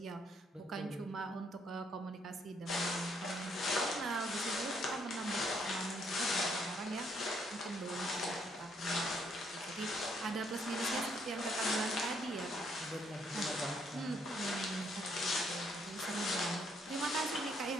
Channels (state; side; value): normal; both; correlation 0.70